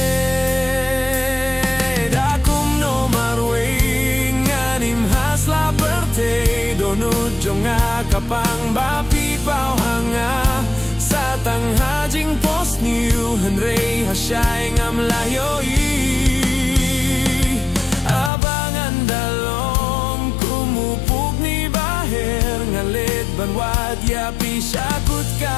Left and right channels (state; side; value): drops out; right; at 18.3 s